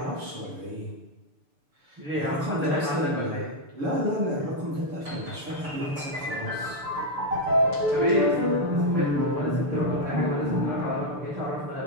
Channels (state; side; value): late; left; 6.9 ms